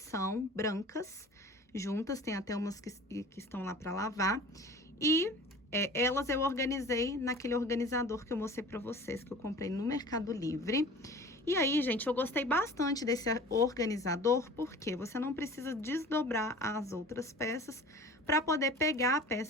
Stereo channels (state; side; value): normal; both; correlation 0.42